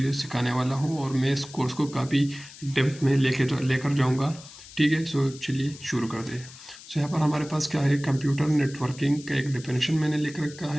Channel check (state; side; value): noise; left; hiss, 18 dB below the sound